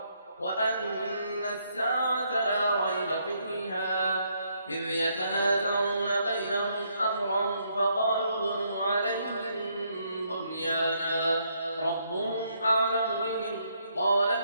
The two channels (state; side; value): inverted; both; correlation -0.73